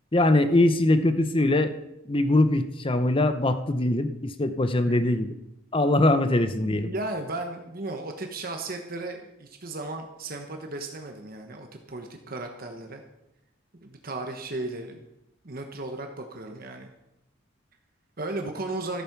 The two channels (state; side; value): normal; both; correlation 0.69